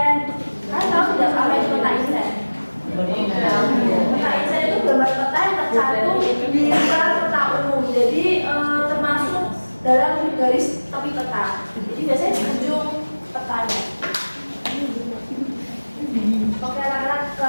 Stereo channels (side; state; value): both; inverted; correlation -1.00